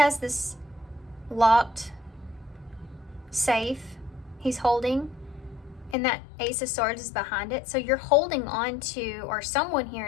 this locked safe he's holding? And that Ace of Swords is behind it. So you're holding on to, or someone here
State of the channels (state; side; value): drops out; right; at 6.0 s